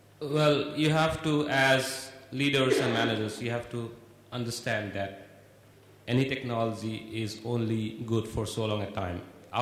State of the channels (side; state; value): both; identical; correlation 1.00